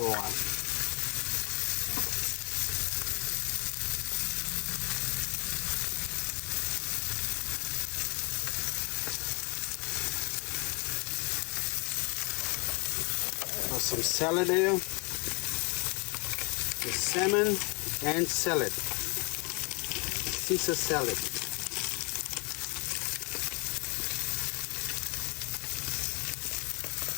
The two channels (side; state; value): right; quieter; 31.2 dB